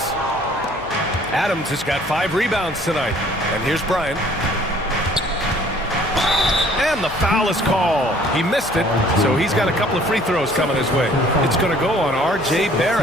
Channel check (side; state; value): left; noise; hum, 22 dB below the sound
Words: Adams has got 5 rebounds tonight. And here's Bryant. And the foul is called. He missed it, so he's got a couple of free throws coming his way. It's going to go on R.J.